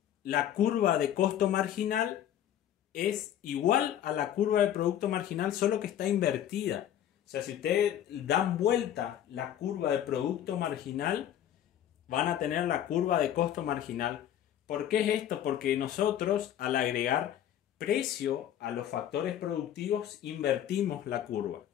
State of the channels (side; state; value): right; quieter; 10.9 dB